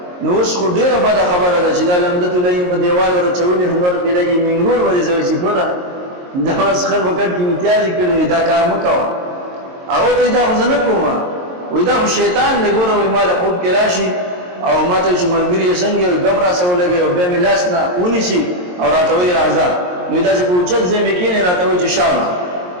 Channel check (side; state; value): left; late; 22 ms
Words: نو اوس خو ډیره بد خبره ده چې دا لمدته لای په دیوال ورچولې هنر کې لګي منګور ورې زوي چې پورا دا واس خر وکړ کې امتیاز کړی دا کار مکوا او ته دا ځنه کومه وې دا شیطان نه ګوره وې مال خوب کې راشي او ماته چې ملګری څنګه غبره سولګي او به ملاس نه ونی شي او راته وې راځه نو دا چې پوښتنه زمې کې نه راته وې چې شابه